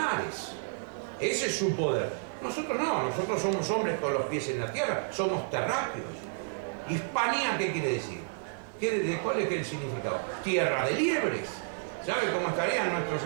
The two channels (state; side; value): silent; left; digital silence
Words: Ese es su poder. Nosotros no, nosotros somos hombres con los pies en la tierra, somos terráqueos. Hispanía, ¿qué quiere decir? ¿Cuál es el significado? Tierra de liebres. ¿Sabe cómo estarían nuestros...?